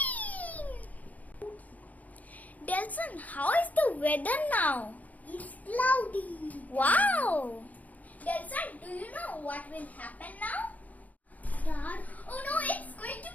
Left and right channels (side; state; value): right; late; 0.076 ms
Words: Delson, how is the weather now? It's cloudy. Wow! Delson, do you know what will happen now? Dark. Oh no, it's going to